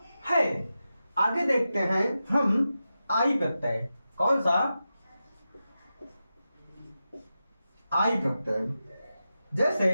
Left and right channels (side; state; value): both; inverted; correlation -0.91